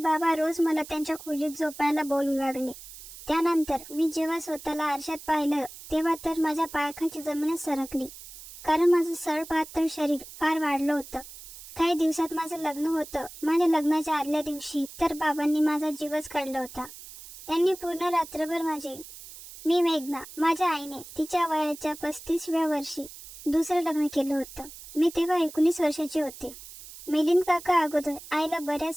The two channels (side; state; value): right; noise; hiss, 16 dB below the sound